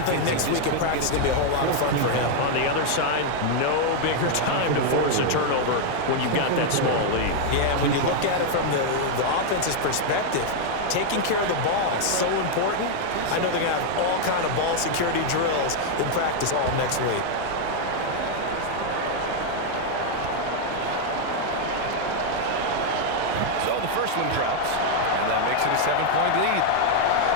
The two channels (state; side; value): different; both; correlation 0.00